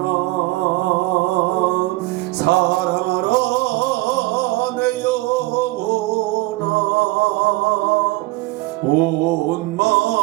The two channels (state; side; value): quieter; left; 20.5 dB